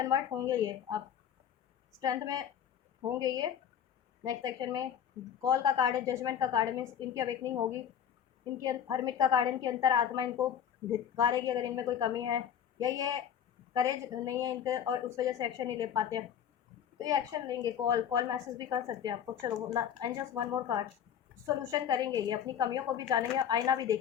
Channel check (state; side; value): quieter; right; 9.0 dB